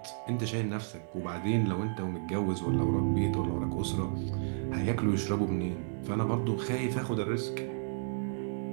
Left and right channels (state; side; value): silent; left; digital silence